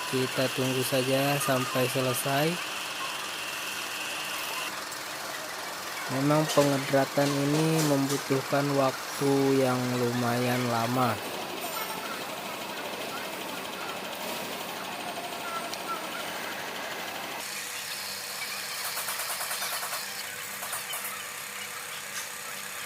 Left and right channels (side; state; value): both; identical; correlation 1.00